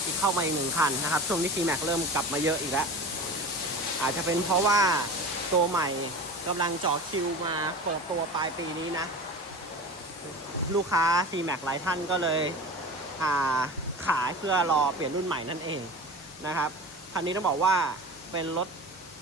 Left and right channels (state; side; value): normal; both; correlation 0.33